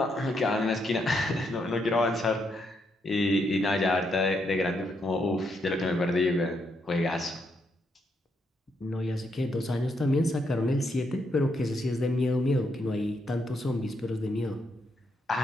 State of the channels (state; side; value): normal; both; correlation 0.78